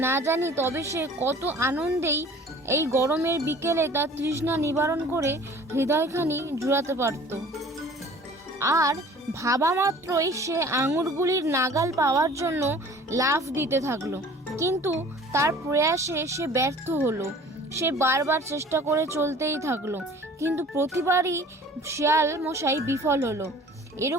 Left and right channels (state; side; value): normal; both; correlation 0.48